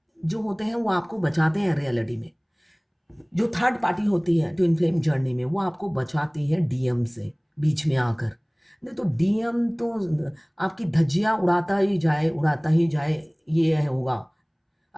जो होते हैं वो आपको बचाते हैं रियलिटी में। जो थर्ड पार्टी होती है ट्विन फ्लेम जर्नी में, वो आपको बचाती है डीएम से बीच में आकर। नहीं तो डीएम तो आपकी धज्जियाँ उड़ाता ही जाए, ये होगा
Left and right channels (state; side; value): identical; both; correlation 1.00